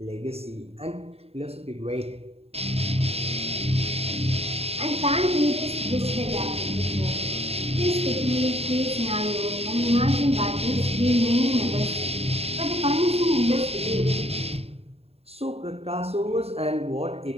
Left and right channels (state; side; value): late; left; 0.29 ms